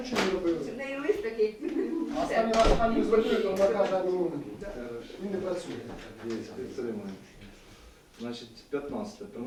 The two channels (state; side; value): identical; both; correlation 1.00